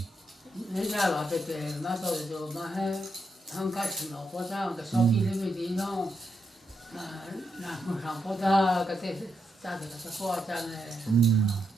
bây giờ là पे ना तो जो ना है thằng cái chuyện nó có ra cái sau khi lên đi nó là một thằng có ra cái thế ra được cái khoa ra này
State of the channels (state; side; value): normal; both; correlation 0.82